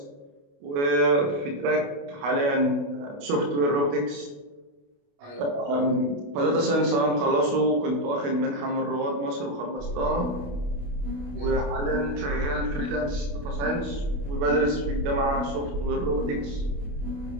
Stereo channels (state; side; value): late; left; 28 ms